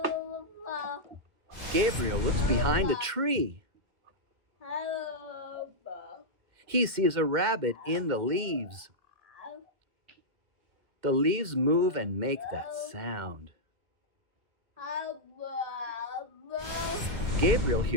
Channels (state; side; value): late; left; 2.1 ms